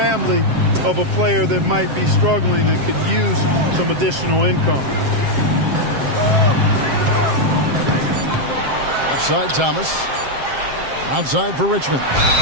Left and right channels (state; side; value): late; left; 7.6 ms